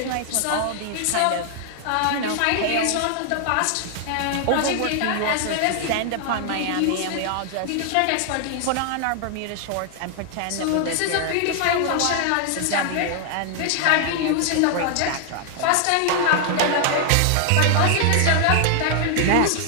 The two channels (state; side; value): different; both; correlation 0.00